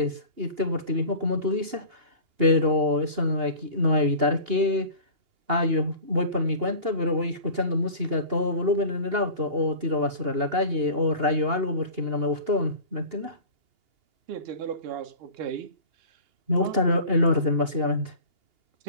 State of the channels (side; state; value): left; late; 2.8 ms